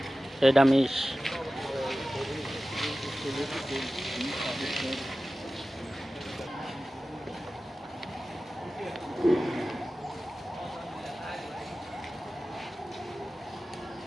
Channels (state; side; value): normal; both; correlation 0.96